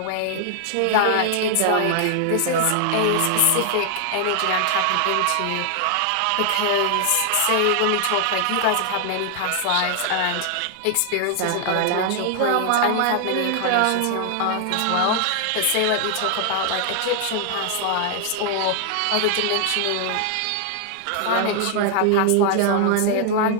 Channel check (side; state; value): both; different; correlation 0.00